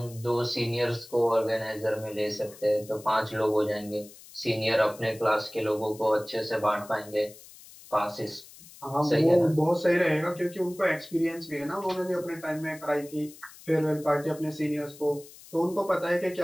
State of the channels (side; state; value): left; noise; hiss, 20 dB below the sound